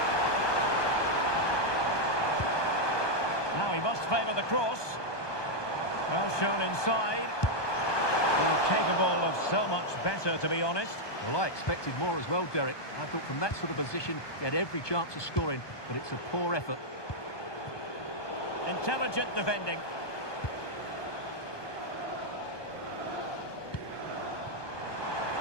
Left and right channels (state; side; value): late; right; 1.2 ms